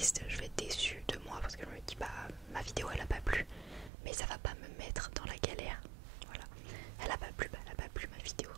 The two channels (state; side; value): drops out; left; at 3.9 s